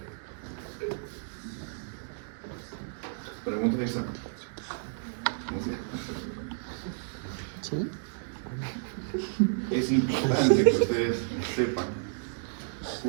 Pregunta de examen. ¿Sí? Es importante que ustedes sepan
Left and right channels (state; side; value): silent; left; digital silence